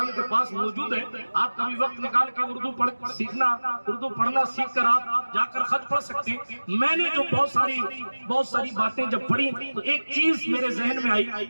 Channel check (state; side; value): inverted; both; correlation -1.00